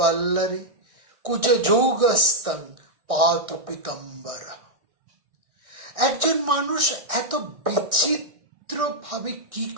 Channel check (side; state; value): left; late; 1.6 ms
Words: কুজ যৌগস্তং পাতু পিতম্বরা। একজন মানুষ এত বিচিত্র ভাবে কি